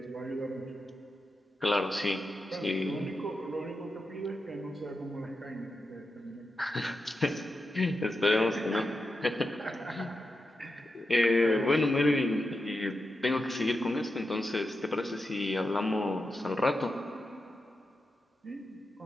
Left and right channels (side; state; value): both; normal; correlation 0.89